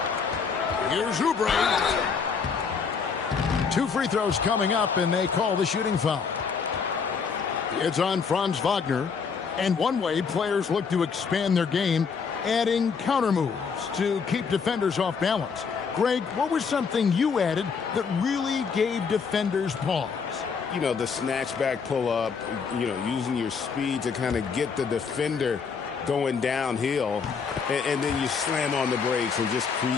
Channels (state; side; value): quieter; right; 5.8 dB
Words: Here's Oubre. 2 free throws coming up, and they call the shooting foul. It's on Franz Wagner. And one way players look to expand their game, adding counter moves to keep defenders off balance. Greg, what was something you added that really gave defenders pause? You know, the snatchback pull-up, you know, using your speed to kind of get the defender going downhill, and then you slam on the brakes and just